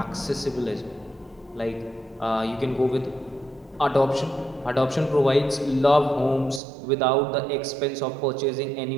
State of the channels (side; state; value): left; drops out; at 6.6 s